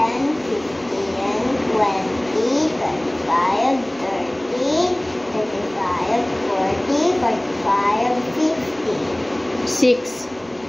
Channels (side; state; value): right; noise; hum, 26 dB below the sound